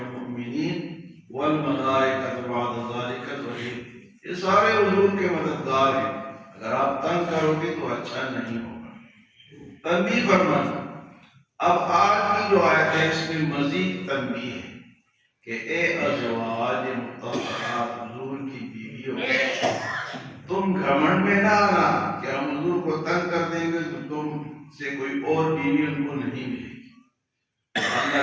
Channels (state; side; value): identical; both; correlation 1.00